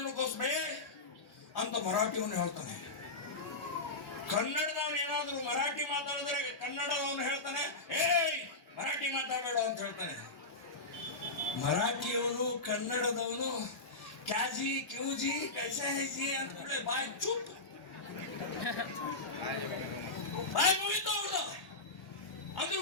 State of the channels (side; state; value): right; quieter; 3.1 dB